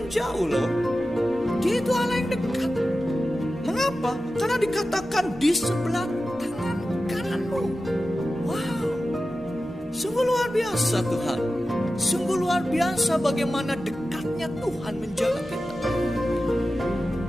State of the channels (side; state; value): both; normal; correlation 0.94